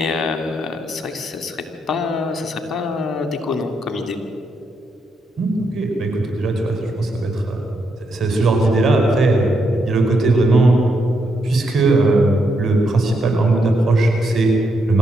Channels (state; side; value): normal; both; correlation 0.79